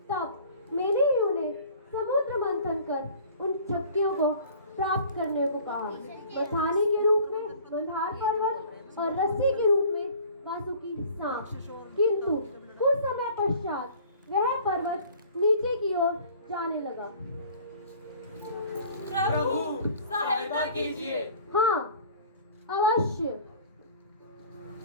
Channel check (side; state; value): both; inverted; correlation -0.48